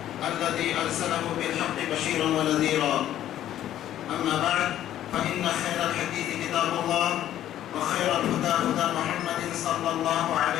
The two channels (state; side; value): quieter; right; 12.1 dB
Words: الذي أرسله بالحق بشيرا ونذيرا. أما بعد فإن خير الحديث كتاب الله وخير الهدى هدى محمد صلى الله